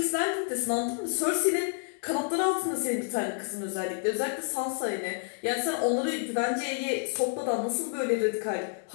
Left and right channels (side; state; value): right; silent; 58 dB below the other